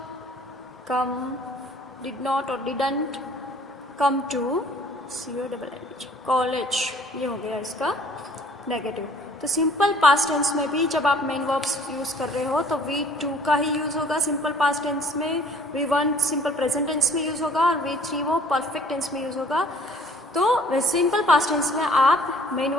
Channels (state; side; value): normal; both; correlation 0.56